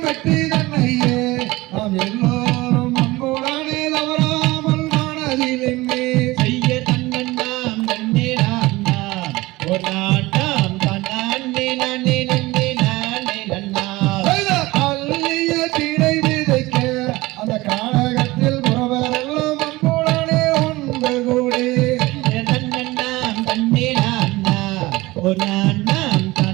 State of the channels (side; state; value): left; quieter; 20.2 dB